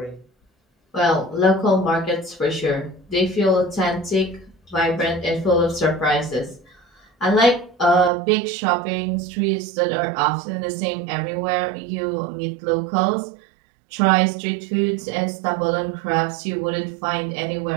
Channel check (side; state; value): left; drops out; at 8.1 s